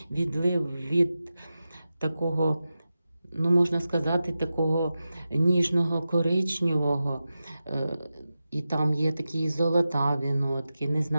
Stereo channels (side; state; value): both; inverted; correlation -0.93